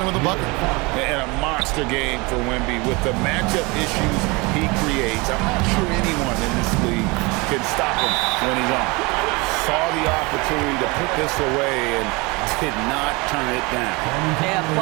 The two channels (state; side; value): quieter; left; 26.1 dB